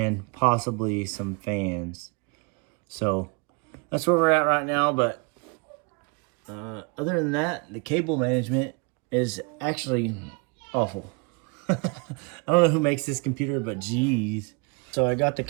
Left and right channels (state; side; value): quieter; left; 31.2 dB